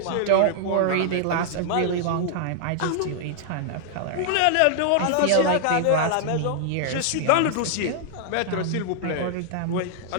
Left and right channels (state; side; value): different; both; correlation -0.01